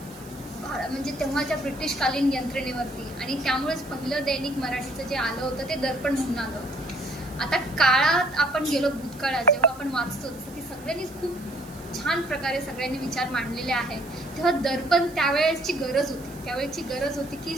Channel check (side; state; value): right; noise; hiss, 21 dB below the sound